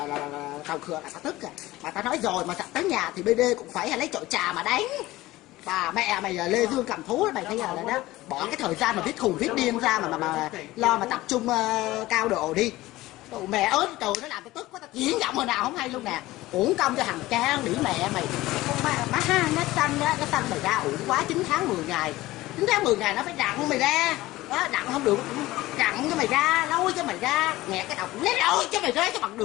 tàu khửa là tao tức à. Mà tao nói rồi, mà tới nhà thì BD cũng phải lấy chổi trà mà đánh. Bà mẹ mày Lê Dương cầm thú mày thấy là đó, bỏ cái thời gian mà viết khùng viết điên ra mà lo mà tập trung cao độ đi. Tụi mẹ ớt trời, nó làm tao tức quá, tao diễn giọng hồi nào không hay luôn nè. Uổng công cho thằng cha đĩ mẹ mày. Con má ha, nó sanh mày ra uổng quá. 9 tháng 10 ngày 9 tháng 10 ngày nó phải đặng mày ra đó, đặng không được đặng cho mày ra, lôi cho mày ra, nghẹt cái đầu lấy lôi cho mày ra cho bằng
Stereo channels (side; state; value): right; quieter; 17.8 dB